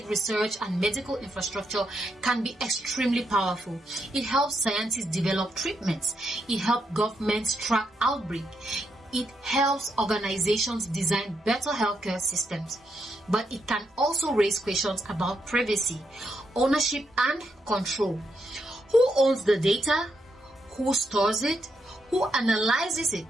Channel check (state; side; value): normal; both; correlation 0.80